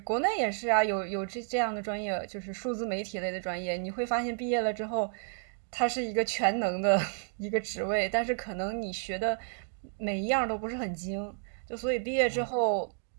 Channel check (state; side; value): silent; left; digital silence